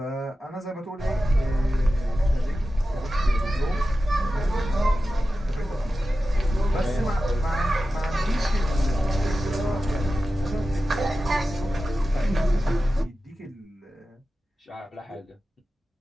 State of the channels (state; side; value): normal; both; correlation 0.93